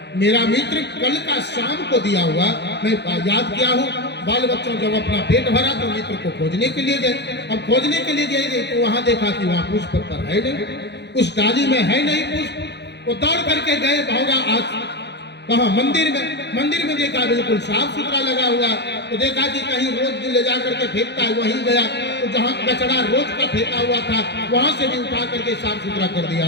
मेरा मित्र कल का शाम को दिया हुआ मैं याद किया हूँ। बाल बच्चों जब अपना पेट भरा तो मित्र को खोजने के लिए गए। अब खोजने के लिए गए तो वहां देखा कि वहां पुष्प पर है नहीं, उस डाली में है नहीं पुष्प। वो दौड़ करके गए भौरा, आज कहा मंदिर में देखा बिल्कुल साफ सुथरा लगा हुआ, तो देखा कि कहीं रोज ले जा करके फेंकता है, वहीं गया तो जहाँ कचरा रोज का फेंका हुआ था वहां से भी उठा करके साफ सुथरा कर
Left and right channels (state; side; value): late; right; 0.50 ms